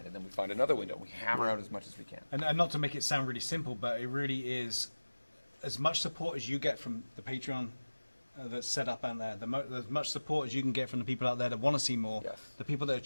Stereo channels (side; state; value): both; inverted; correlation -1.00